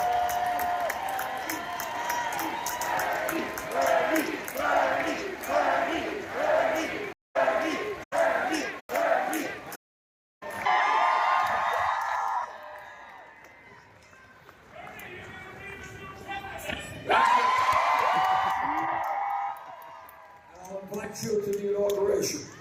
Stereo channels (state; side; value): identical; both; correlation 1.00